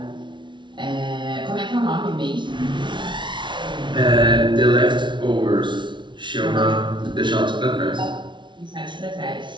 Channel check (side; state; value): left; late; 0.23 ms